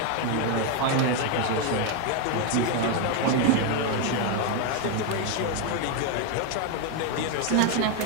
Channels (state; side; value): different; both; correlation 0.01